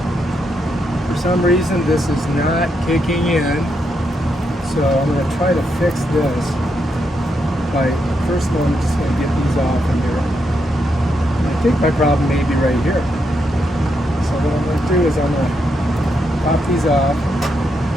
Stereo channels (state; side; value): normal; both; correlation 0.81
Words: For some reason, this is not kicking in, so I'm gonna try to fix this. First of all, I'm just going to get these off in here. And I think my problem may be right here. So what I'm going to do is I'm going to pop these off,